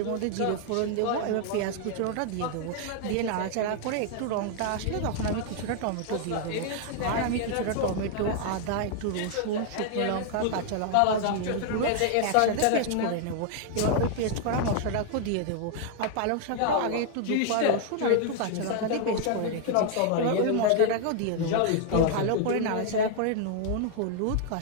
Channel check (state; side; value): different; both; correlation 0.00